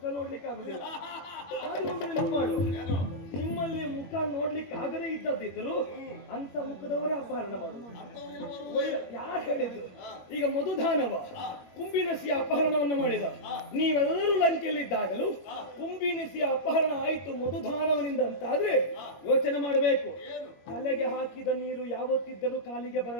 ನೋಡ್ಲಿಕ್ಕೆ ಆಗುದಿಲ್ಲ. ಮಾಡು, ನಿಮ್ಮಲ್ಲಿ ಮುಖ ನೋಡ್ಲಿಕ್ಕೆ ಆಗದೇ ಇದ್ದದಿದ್ರು ಅಂತ ಮುಖದವರೇ ಅಪಹರಣ ಮಾಡುದು. ಯಾರು ಹೇಳಿದ್ರು? ಈಗ ಮಧುದಾನವ ಕುಂಭಿನಸಿಯ ಅಪಹರಣವನ್ನ ಮಾಡಿದ. ನೀವೆಲ್ಲರೂ ಲಂಕೆಯಲ್ಲಿದ್ದಾಗಲೂ ಕುಂಭಿನಸಿಯ ಅಪಹರಣ ಆಯಿತು ಮಧುದಾನವನಿಂದ ಅಂತಾದ್ರೆ ಯೋಚನೆ ಮಾಡಬೇಕು. ತಲೆಗೆ ಹಾಕಿದ ನೀರು ಯಾವತ್ತಿದ್ದರೂ ಕಾಲಿಗೆ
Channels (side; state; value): right; late; 22 ms